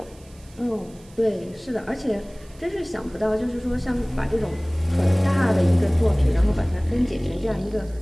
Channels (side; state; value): right; noise; hiss, 27 dB below the sound